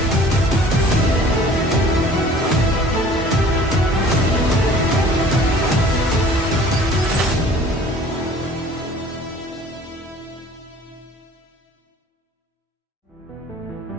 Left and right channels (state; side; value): normal; both; correlation 0.49